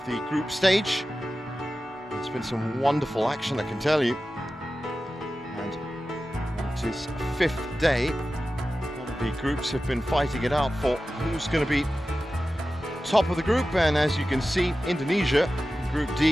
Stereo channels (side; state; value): both; normal; correlation 0.94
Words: the group stage. It's been some wonderful action, I can tell you. And it is 5th day. A lot of The groups have been fighting it out for who's going to be top of the group, and as you can see, Indonesia, Group